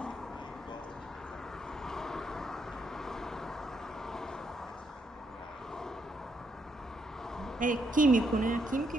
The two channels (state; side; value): normal; both; correlation 0.77